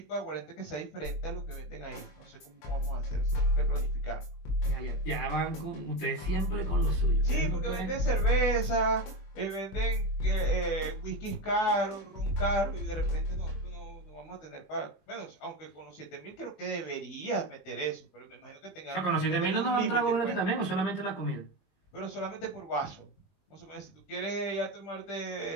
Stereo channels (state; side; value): late; right; 20 ms